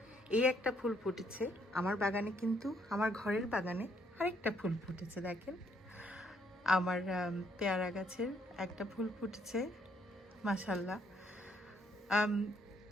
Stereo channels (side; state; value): both; normal; correlation 0.70